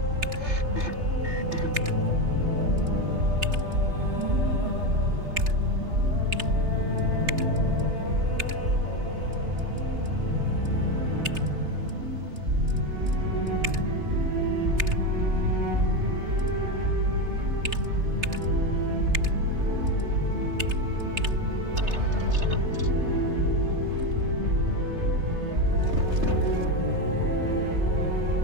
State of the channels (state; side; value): late; left; 3.3 ms